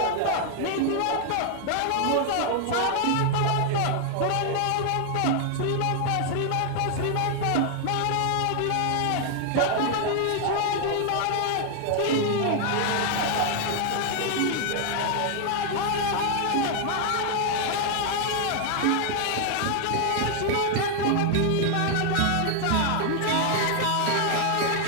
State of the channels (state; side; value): different; both; correlation 0.00